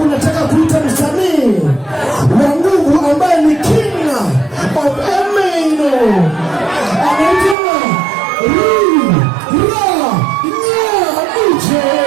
nataka kuita msanii wa nguvu ambaye ni king of Emeno. Anaitwa Ije.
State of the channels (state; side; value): drops out; left; at 7.6 s